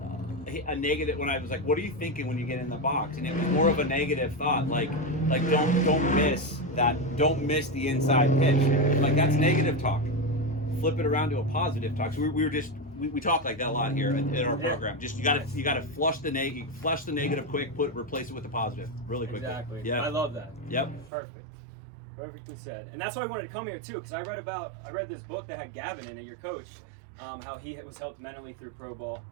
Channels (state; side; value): drops out; left; at 21.1 s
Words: negative. When I was like, what are you thinking when you get in the box? And it was more of a negative thought, don't miss that, don't miss the inside pitch. That's negative talk. Flip it around to a positive talk. So we talk like that a lot here in our program. Just you gotta flush the negative quick, replace it with the positive really quickly. Exactly. Yeah. I love that. Yep. Perfectly said. And that's why I wanted to come here too, because I read this book that had Gavin in it, your coach, how he was helped mentally through pro ball.